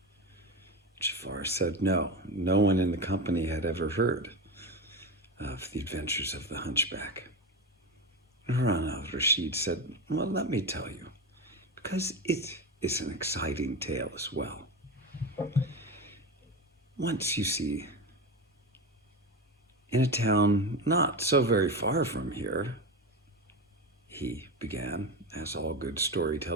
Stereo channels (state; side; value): normal; both; correlation 0.20